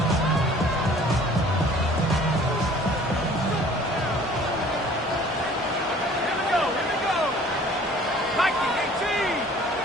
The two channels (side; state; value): both; normal; correlation 0.51